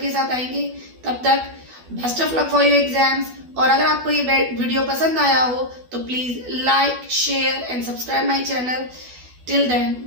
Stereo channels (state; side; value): late; left; 12 ms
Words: साथ आएंगे. तब तक best of luck for your exams. और अगर आपको ये वीडियो पसंद आया हो तो please like, share and subscribe my channel. Till then,